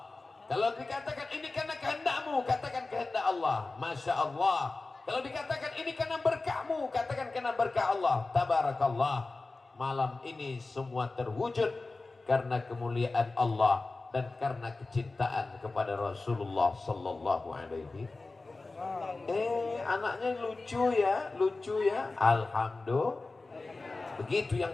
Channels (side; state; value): right; quieter; 3.5 dB